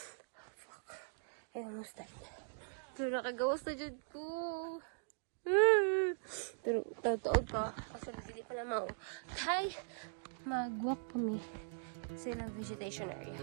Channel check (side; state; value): left; silent; digital silence